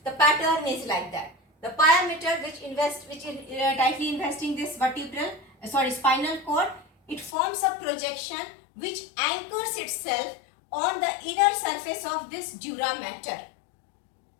the pattern is like that. The pia mater which is tightly investing this spinal cord, it forms a projection which anchors itself on the inner surface of this dura mater.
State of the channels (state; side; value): drops out; right; at 7.4 s